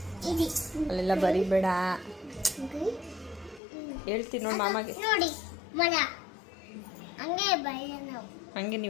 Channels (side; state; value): right; drops out; at 3.6 s